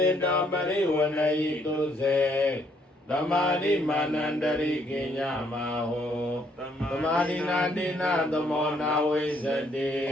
ေတောပရိဝဏယိတုစေသမာဓိမာနန္တရိကိညမဟောသမာဓိနာတိနာသမောနာဝိသတိ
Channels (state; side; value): normal; both; correlation 0.68